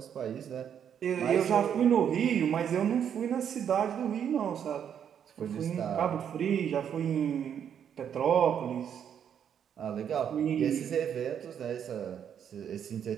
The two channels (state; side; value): quieter; left; 8.6 dB